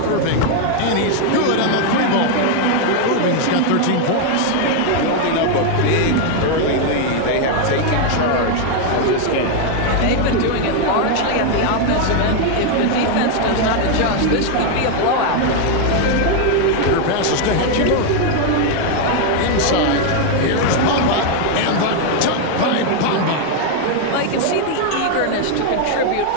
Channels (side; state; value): both; different; correlation 0.01